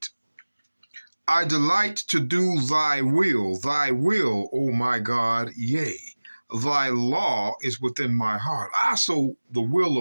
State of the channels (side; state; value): both; inverted; correlation -1.00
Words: I delight to do thy will, O my God, yea, thy law is within my heart. So the will